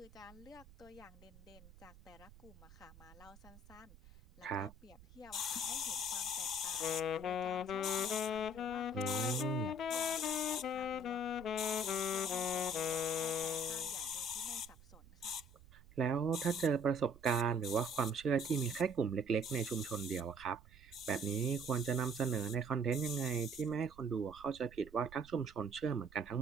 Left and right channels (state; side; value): noise; right; rumble, 21 dB below the sound